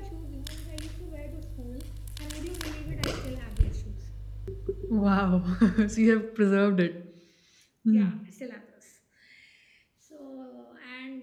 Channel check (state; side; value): identical; both; correlation 1.00